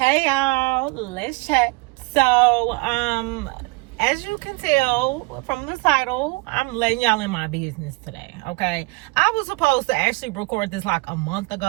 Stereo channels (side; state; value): left; quieter; 25.5 dB